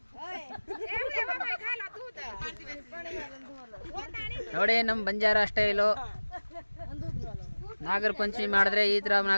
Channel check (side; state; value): both; inverted; correlation -1.00